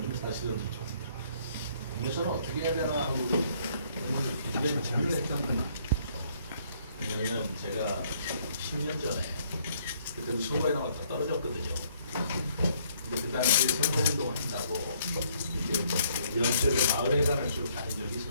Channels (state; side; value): inverted; both; correlation -0.65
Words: 사실은 좀 공개서는 어떻게 해야 되나 하고 굉장히 고민을 했던 거예요. 왜냐면 제가 10년 전에 그때도 선거에 나왔다 떨어졌거든요. 근데 그 당시에 선거운동을 한다고 연초에 마을회관을 쭉 다닌 적이